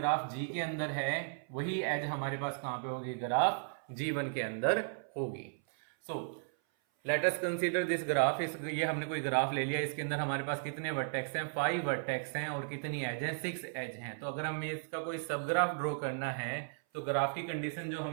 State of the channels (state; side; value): silent; left; 54 dB below the other